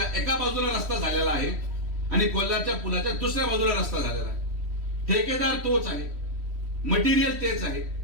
एका बाजूला रस्ता झालेला आहे आणि कोल्हारच्या पुलाच्या दुसऱ्या बाजूला रस्ता झालेला आहे. ठेकेदार तोच आहे, मटेरियल तेच आहे,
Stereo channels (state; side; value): late; left; 3.1 ms